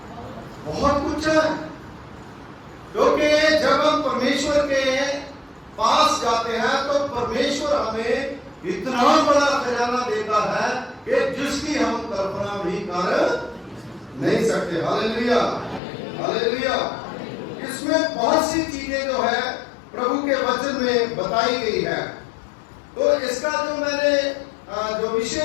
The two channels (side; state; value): right; drops out; at 15.8 s